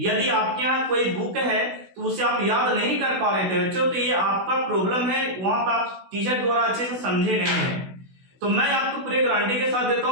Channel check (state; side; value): late; left; 16 ms